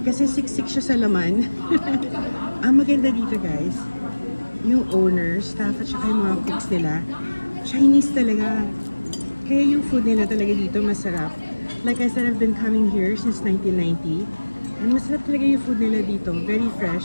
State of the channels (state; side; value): inverted; both; correlation -1.00